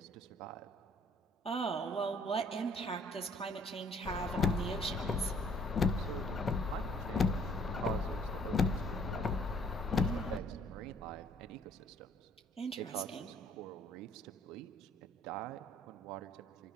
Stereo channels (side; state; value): both; normal; correlation 0.60